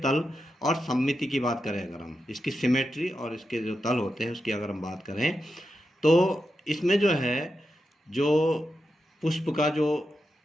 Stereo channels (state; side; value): normal; both; correlation 0.88